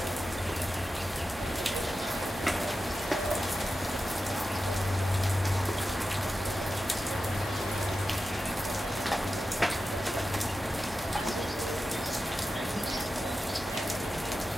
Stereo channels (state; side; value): normal; both; correlation 0.92